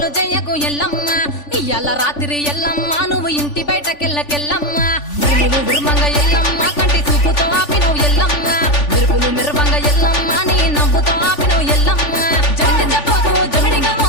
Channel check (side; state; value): right; late; 3.4 ms